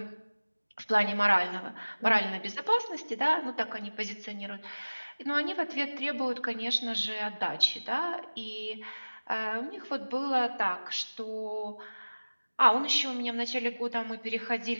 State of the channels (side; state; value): both; inverted; correlation -1.00